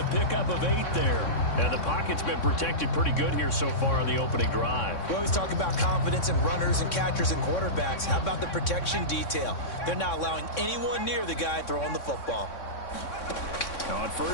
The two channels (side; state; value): right; late; 3.6 ms